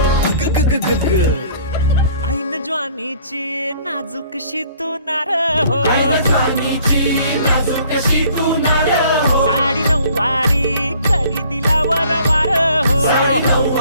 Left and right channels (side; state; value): both; inverted; correlation -0.56